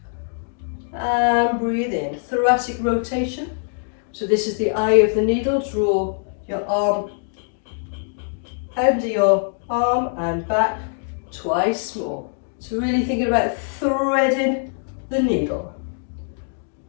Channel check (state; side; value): silent; right; digital silence